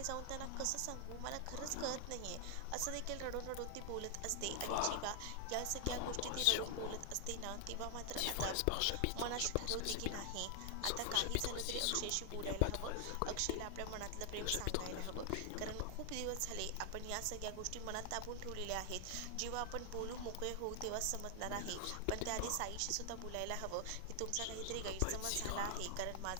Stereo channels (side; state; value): both; different; correlation 0.00